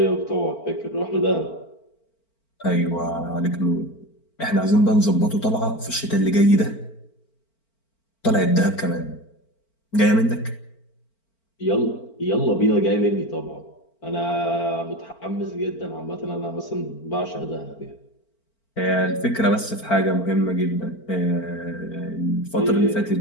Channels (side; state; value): right; late; 4.5 ms